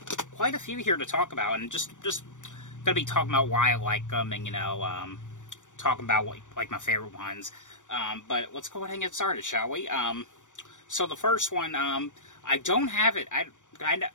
quite a few here to talk about, and just gonna be talking about why I like them, and talking about like my favorite ones. But let's go ahead and get started, shall we? So the first one, I don't have it. I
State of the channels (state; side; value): late; right; 0.86 ms